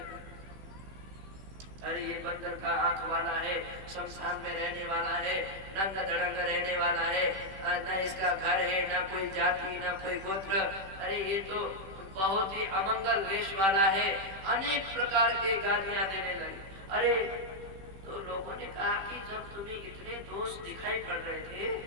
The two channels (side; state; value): left; late; 16 ms